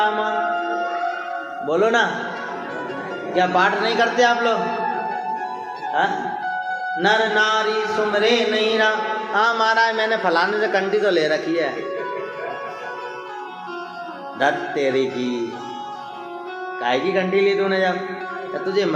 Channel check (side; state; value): both; identical; correlation 1.00